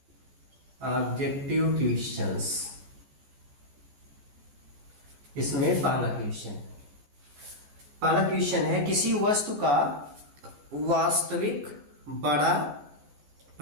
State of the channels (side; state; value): left; late; 14 ms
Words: ऑब्जेक्टिव क्वेश्चंस, इसमें पहला क्वेश्चन है किसी वस्तु का वास्तविक बड़ा